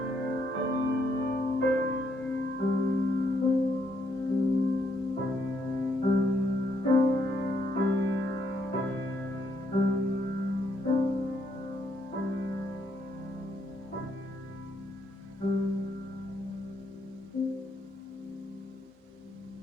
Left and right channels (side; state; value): both; normal; correlation 0.74